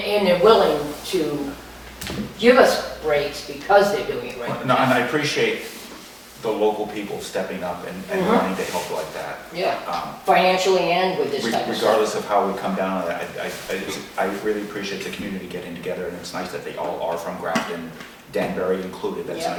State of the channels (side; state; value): both; identical; correlation 1.00